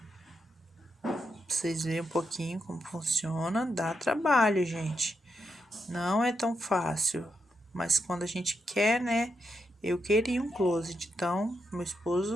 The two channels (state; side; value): normal; both; correlation 0.83